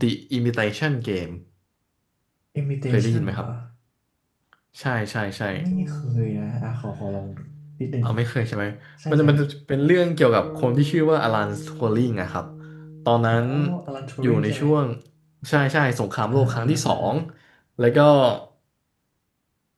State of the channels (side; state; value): both; identical; correlation 1.00